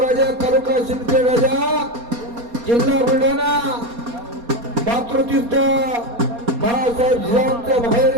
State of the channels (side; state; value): left; late; 4.2 ms